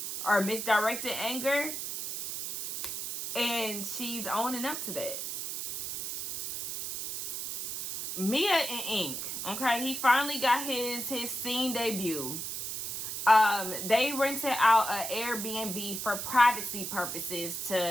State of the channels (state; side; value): noise; right; hiss, 5 dB below the sound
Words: or misdirected anger. And she's owning up to that. Mia and Ink, okay, he finally got his scene debut. They rented out an Airbnb for privacy purposes